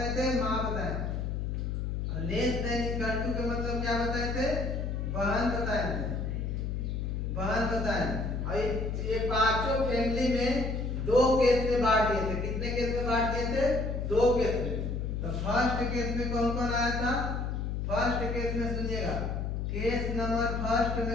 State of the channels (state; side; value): noise; left; hum, 2 dB below the sound